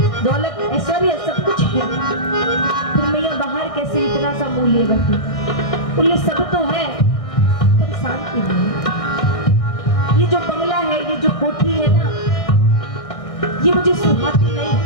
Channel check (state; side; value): late; right; 1.6 ms